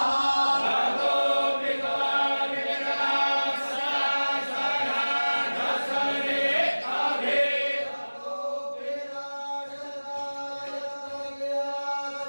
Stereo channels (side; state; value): both; inverted; correlation -1.00